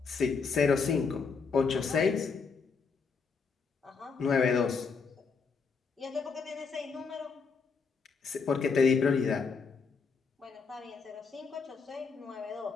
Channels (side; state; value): right; quieter; 5.2 dB